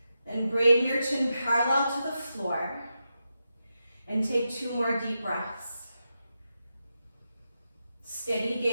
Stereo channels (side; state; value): both; inverted; correlation -0.88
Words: Then bring your chin parallel to the floor and take 2 more deep breaths. Steady